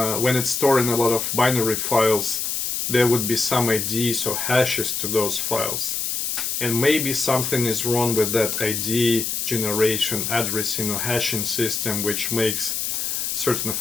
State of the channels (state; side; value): noise; left; hiss, 1 dB below the sound